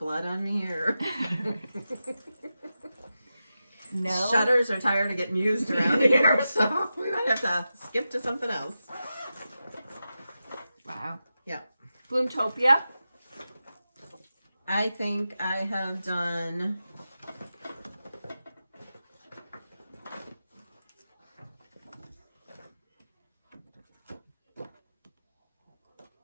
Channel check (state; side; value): inverted; both; correlation -0.91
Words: on me, or No. shutters are tired of getting used around here, so we might have to skip to something else. Wow. Yeah. Bloomtopia. I think I have done...